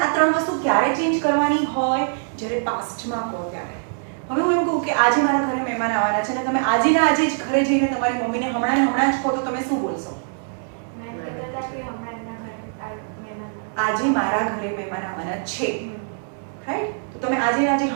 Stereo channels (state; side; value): silent; left; digital silence